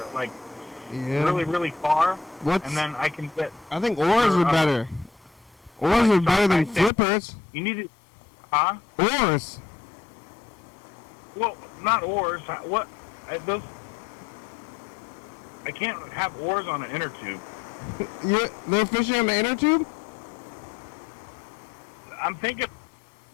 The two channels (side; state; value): right; drops out; at 6.9 s